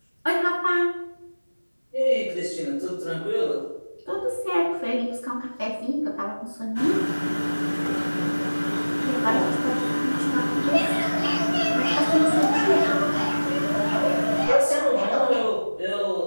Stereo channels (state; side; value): inverted; both; correlation -1.00